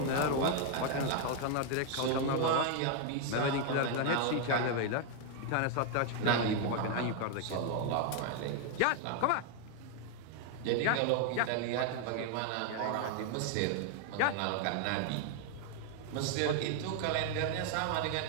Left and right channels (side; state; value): both; different; correlation 0.00